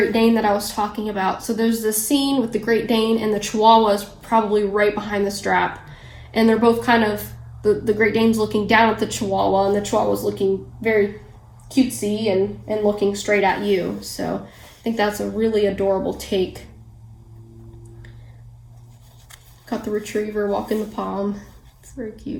Dane that I was talking about. So there's this scene with the Great Dane and the Chihuahua is probably right behind the strap. And they're both kind of, the Great Dane's looking down at the Chihuahua and the Chihuahua's looking very cutesy and looking straight at you. So I think that's a really adorable take. Got the retriever walking the palm. It's very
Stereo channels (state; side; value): identical; both; correlation 1.00